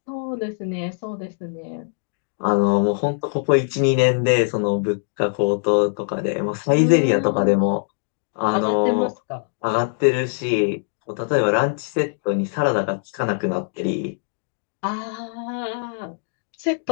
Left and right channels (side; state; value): right; silent; digital silence